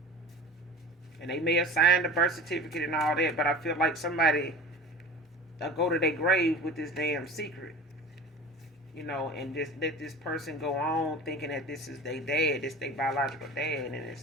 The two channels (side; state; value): both; normal; correlation 0.36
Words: And they may have signed the birth certificate and all that. But I feel like somebody will go to their grave with this damn secret. And just let this person go on thinking that this is their dad. This their biological dad. And